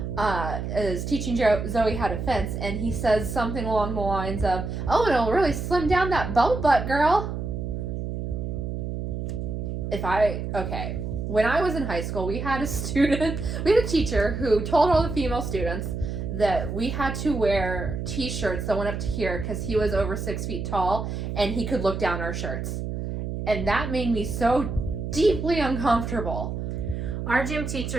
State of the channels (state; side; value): noise; right; hum, 4 dB below the sound